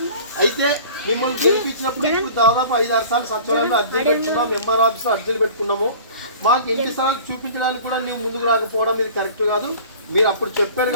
అయితే మిమ్మల్ని గెలిపించినప్పుడు ఇప్పుడు దాదాపు 5-6 సార్లు సచివాలయంలో అర్జీలు పెట్టుకున్నాం, ఎంఆర్ ఆఫీస్లో అర్జీలు పెట్టుకున్నాము. మాకు ఇంటి స్థలాలు చూపించడానికి కూడా నువ్వు ముందుకు రాకపోవడం ఇది కరెక్ట్ కాదు. మీరు అప్పుడు చెప్పారు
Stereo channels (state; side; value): inverted; both; correlation -0.44